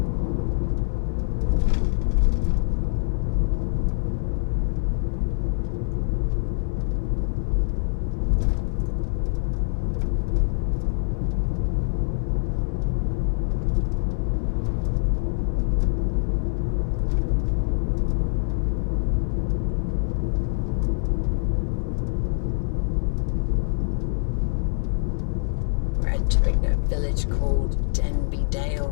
Entering a village called Denby Dale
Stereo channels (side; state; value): right; silent; digital silence